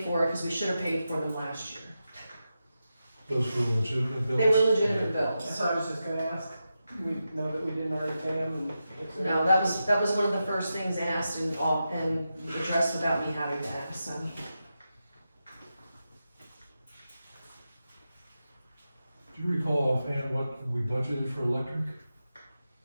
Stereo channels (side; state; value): both; inverted; correlation -0.89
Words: for, because we should have paid for them last year. Those were legitimate bills? They were legitimate bills. That's what I was just gonna ask. We know that we didn't already pay them and. No, that was one of the first things asked and addressed without me having to ask, so. Do you recall offhand what we budgeted for electric?